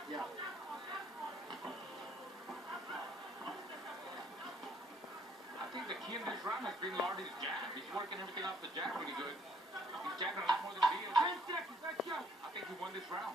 Yeah. I think the key in this round has been Lartey's jab. He's working everything off the jab really good. He's jabbing a lot more than Diaz. 10 seconds, let's go. I think he won this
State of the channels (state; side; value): normal; both; correlation 0.64